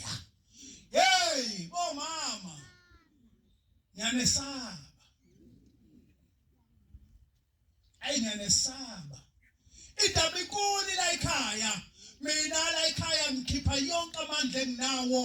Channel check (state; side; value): identical; both; correlation 1.00